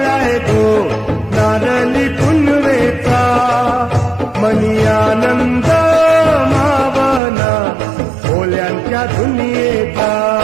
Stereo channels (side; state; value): left; drops out; at 7.2 s